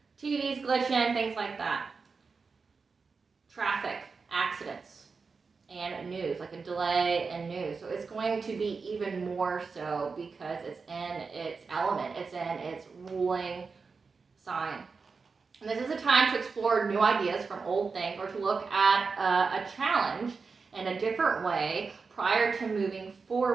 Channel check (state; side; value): quieter; left; 4.8 dB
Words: TV's glitching, things like that. Traffic, accidents, and news, like a delay in news. So it's going to be even more so because it's in its element, it's in its ruling sign. And this is a time to explore new ideas from old things or to look at a challenge in a different way prior to moving